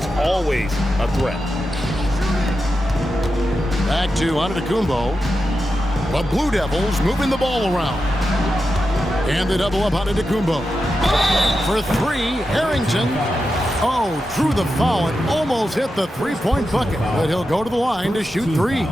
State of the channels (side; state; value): both; normal; correlation 0.89